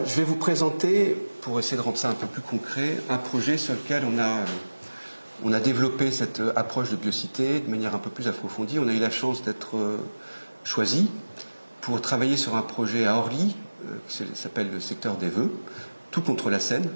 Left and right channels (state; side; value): inverted; both; correlation -1.00